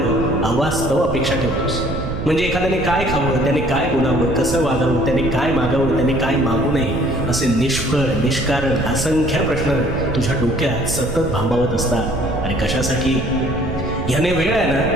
अवास्तव अपेक्षा ठेवतोस. म्हणजे एखाद्याने काय खावं, त्याने काय बोलावं, कसं वागावं, त्याने काय मागावं, त्याने काय मागू नये, असे निष्फळ निष्कारण असंख्य प्रश्न तुझ्या डोक्यात सतत भांबावत असतात. आणि कशासाठी? ह्याने वेळ आहे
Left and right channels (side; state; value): right; noise; rumble, 6 dB below the sound